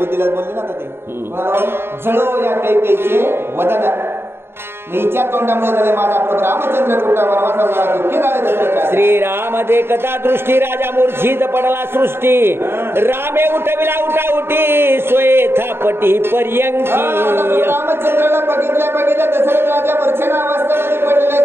बोलले ना ते जळो या कैकेयीचे वदन. मीच्या तोंडामुळे झाले माझा प्रभू रामचंद्र कुठा वनवासाला झाला दुःखी झाले दशरथ. श्रीराम देखता दृष्टी राजा मूर्छित पडला सृष्टी रामे उठविला उठाउटी सोये थापटी पर्यंकी. रामचंद्राला बघितल्या दशरथ राजा मूर्छना अवस्थेमध्ये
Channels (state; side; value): late; left; 0.11 ms